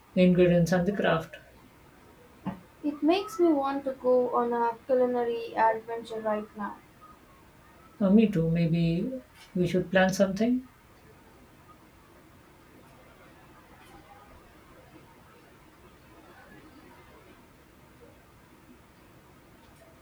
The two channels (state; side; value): identical; both; correlation 1.00